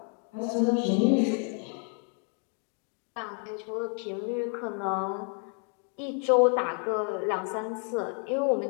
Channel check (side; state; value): right; quieter; 39.8 dB